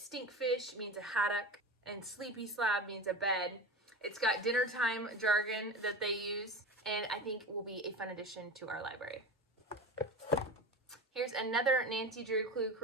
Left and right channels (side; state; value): both; normal; correlation 0.29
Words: means a haddock, and sleepy slab means a bed. It's got dinner time jargon that they use, and I think will be a fun addition to our library. Here's another Nancy Drew Clue